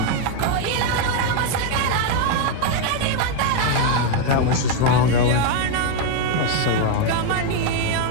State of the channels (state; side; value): different; both; correlation 0.01